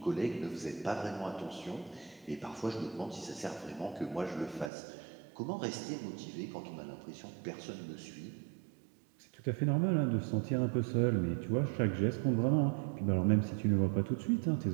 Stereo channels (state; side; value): drops out; left; at 4.7 s